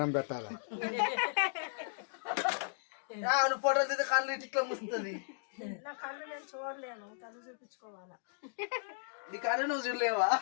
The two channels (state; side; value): silent; right; digital silence